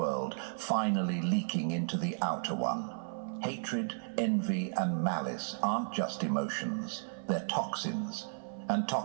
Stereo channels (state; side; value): silent; left; 55 dB below the other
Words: finally leaking into the outer one. Hatred, envy, and malice aren't just emotions. They're toxins. And